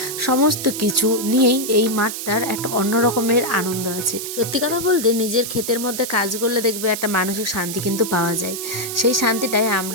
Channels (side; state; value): right; noise; hiss, 6 dB below the sound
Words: সমস্ত কিছু নিয়েই এই মাঠটার একটা অন্য রকমের আনন্দ আছে। সত্যি কথা বলতে নিজের ক্ষেতের মধ্যে কাজ করলে দেখবে একটা মানসিক শান্তি কিন্তু পাওয়া যায়। সেই শান্তিটাই